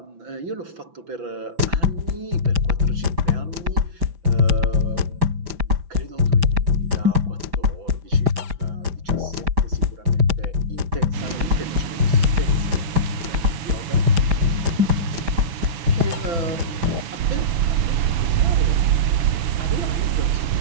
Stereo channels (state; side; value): late; left; 6.1 ms